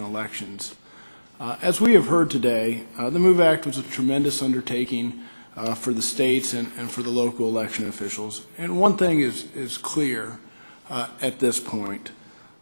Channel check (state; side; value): inverted; both; correlation -1.00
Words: As we have heard today, the MOVE Act was a tremendous undertaking for the states and for the local election officials. And one thing is clear at this point.